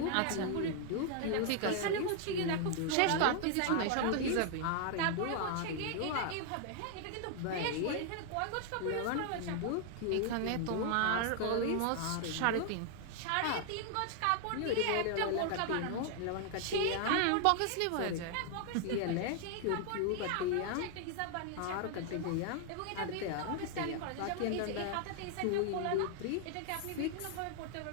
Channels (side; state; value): both; different; correlation 0.00